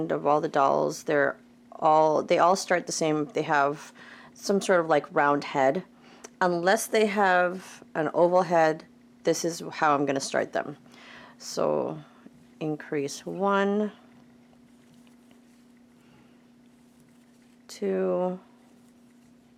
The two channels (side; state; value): both; identical; correlation 1.00